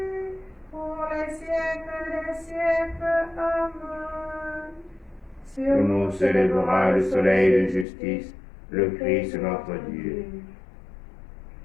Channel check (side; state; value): right; drops out; at 7.9 s